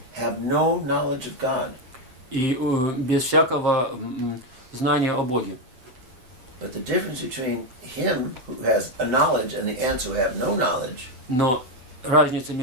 have no knowledge of God. и без всякого знания о Боге. But the difference between him who has a knowledge and the ants who have no knowledge Но разница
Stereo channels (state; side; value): late; left; 7.9 ms